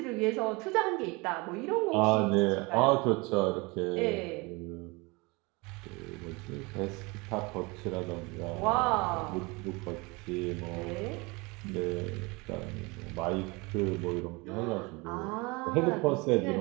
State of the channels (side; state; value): left; quieter; 26.2 dB